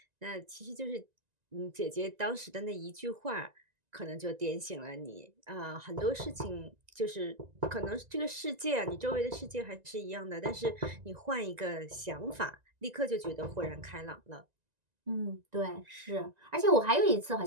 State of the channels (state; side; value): late; left; 1.9 ms